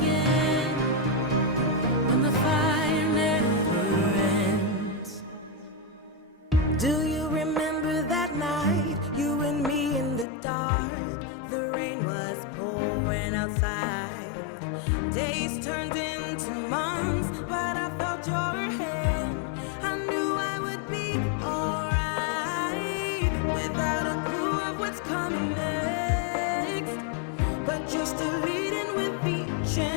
when the fire never ends. Do you remember that night, you and me in the dark? The rain was pouring outside. Days turned into months, but I felt your hand. I knew I would be alright, without a clue of what's coming next. But you're still leading with each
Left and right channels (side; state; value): right; drops out; at 10.2 s